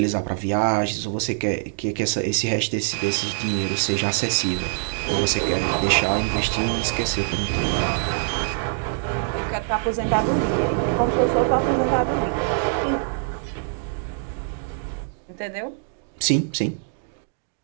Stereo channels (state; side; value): silent; left; digital silence